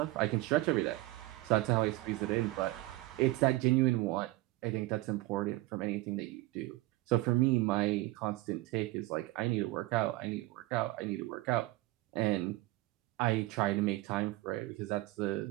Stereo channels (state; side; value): quieter; left; 19.5 dB